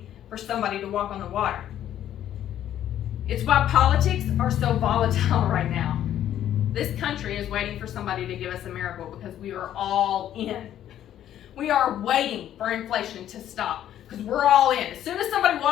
for somebody to walk on the water. It's why politics are so volatile right now. This country is waiting for somebody to give us a miracle because we are all in. We are waiting for inflation to stop because we're all in. As soon as somebody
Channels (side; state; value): right; quieter; 11.3 dB